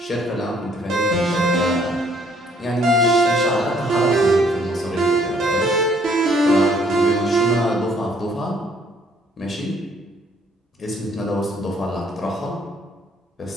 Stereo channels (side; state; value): both; normal; correlation 0.63